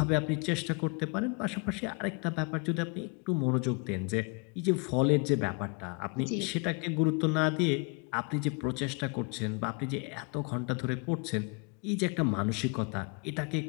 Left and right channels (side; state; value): right; quieter; 32.2 dB